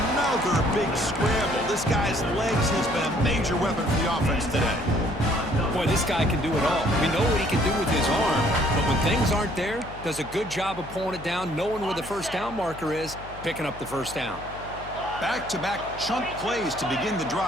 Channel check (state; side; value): noise; left; hum, 15 dB below the sound